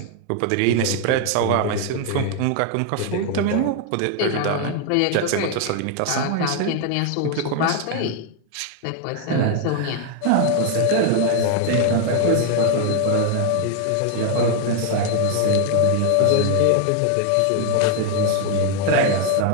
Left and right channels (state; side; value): different; both; correlation 0.00